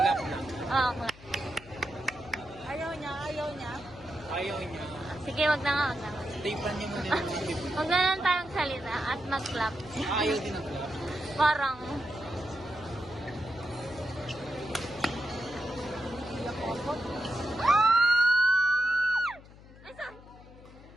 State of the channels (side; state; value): left; noise; hum, 20 dB below the sound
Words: na. Okay. Ayaw niya. Ayaw niya. Sige, wag na nga. Tapan niyo muna yung mga libre. Huwag na lang tayong salita at mag-clap. Ayaw din ang club. Parang, ay, sorry.